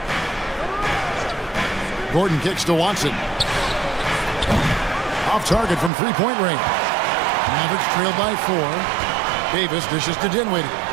Gordon kicks to Watson. Off target from three-point range. Mavericks trailed by 4. Davis dishes to Dinwiddie.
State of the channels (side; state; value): left; drops out; at 5.9 s